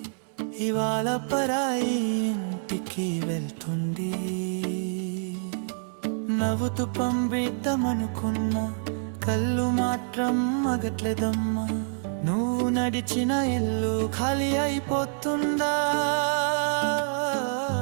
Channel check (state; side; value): silent; left; 60 dB below the other